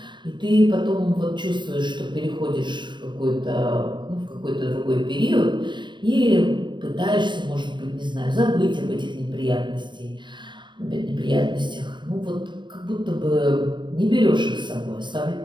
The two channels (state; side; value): late; left; 0.23 ms